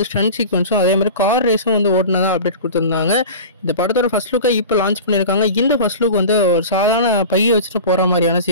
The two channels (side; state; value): both; inverted; correlation -0.34